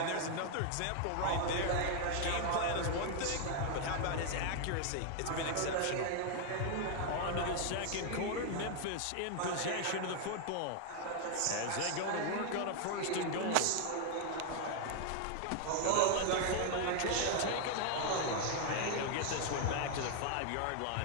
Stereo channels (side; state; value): both; different; correlation 0.00